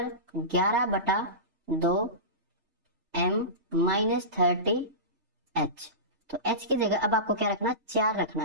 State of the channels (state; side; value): late; left; 3.3 ms